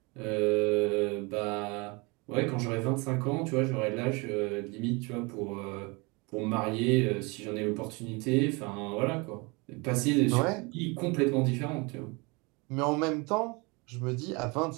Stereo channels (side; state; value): left; quieter; 28.0 dB